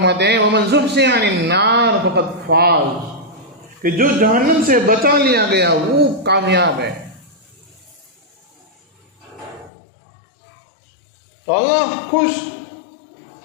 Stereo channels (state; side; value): drops out; right; at 9.7 s